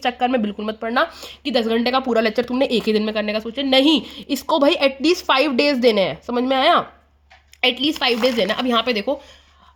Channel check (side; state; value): both; identical; correlation 1.00